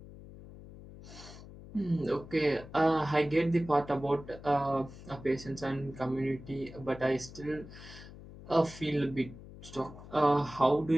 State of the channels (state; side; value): noise; left; hum, 16 dB below the sound